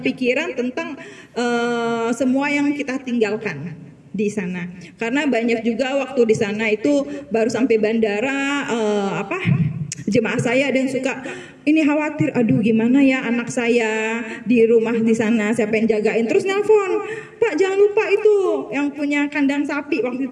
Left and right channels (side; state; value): both; identical; correlation 1.00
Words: pikiran tentang semua yang kita tinggalkan di sana, karena banyak juga waktu di sana itu baru sampai bandara jemaah saya ada yang suka ini khawatir, aduh gimana ya anak saya di rumah di sana siapa yang jagain, terus nelpon, Pak jangan lupa itu yang punya kandang sapi waktu